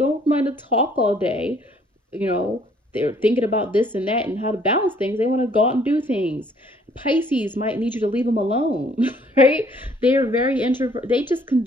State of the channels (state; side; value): normal; both; correlation 0.62